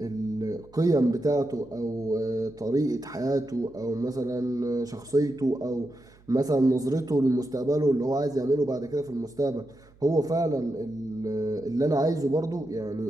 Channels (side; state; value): right; noise; hum, 28 dB below the sound